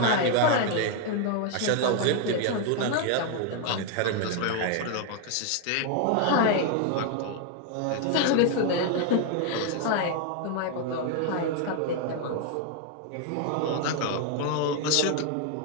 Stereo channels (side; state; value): both; different; correlation 0.00